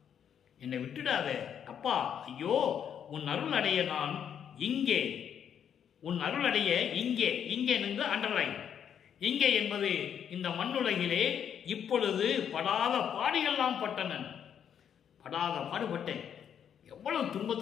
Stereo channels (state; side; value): quieter; right; 8.6 dB